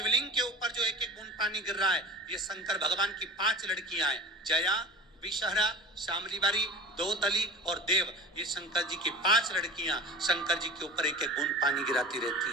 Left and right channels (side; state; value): both; normal; correlation 0.35